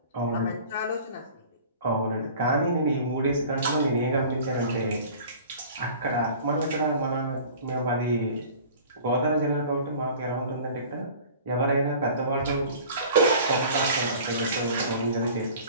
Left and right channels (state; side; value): inverted; both; correlation -0.44